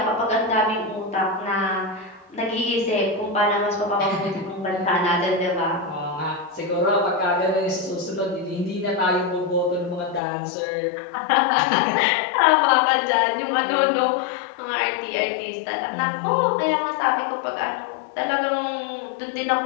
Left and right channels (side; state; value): right; drops out; at 10.2 s